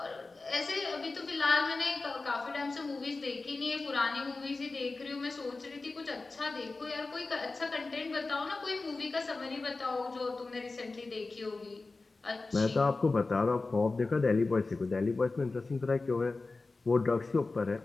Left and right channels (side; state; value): right; quieter; 3.6 dB